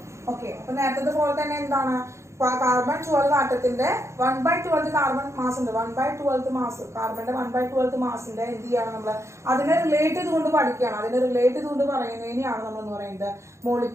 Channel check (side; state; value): left; late; 0.14 ms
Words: Okay, അപ്പൊ നേരത്തെ പോലെ തന്നെ എന്താണ്? കാർബൺ 12 ആറ്റത്തിന്റെ 1/12 കാർബൺ മാസ് ഉണ്ട്. 1/12 മാസ് കാർബണിന്റെ 1/12 മാസിന്റെ എന്ത് ചെയ്യാണ് നമ്മൾ? അതിനെ റിലേറ്റ് ചെയ്തുകൊണ്ട് പഠിക്കുകയാണ്. അതിനെ റിലേറ്റ് ചെയ്തുകൊണ്ട് പറയുന്നതിനെയാണ് നമ്മൾ എന്ന് പറയുന്നത്